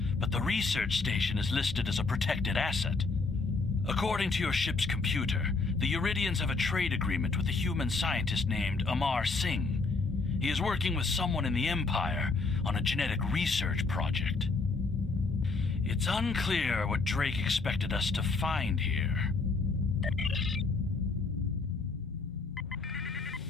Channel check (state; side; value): quieter; right; 4.0 dB